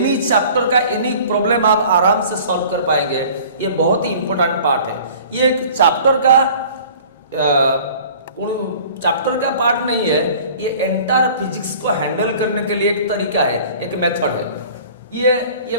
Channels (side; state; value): both; inverted; correlation -0.47